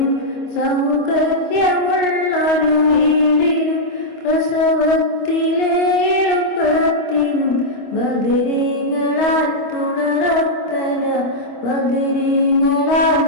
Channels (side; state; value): right; late; 25 ms